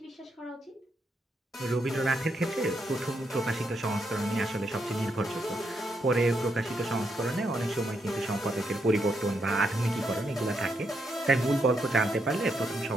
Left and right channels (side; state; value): both; normal; correlation 0.79